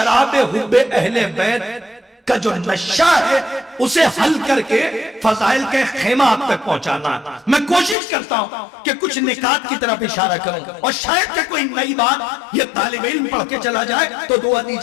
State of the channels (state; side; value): drops out; right; at 8.0 s